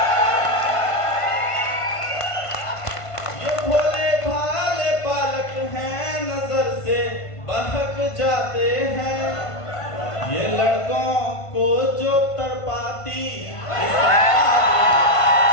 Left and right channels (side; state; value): right; late; 1.5 ms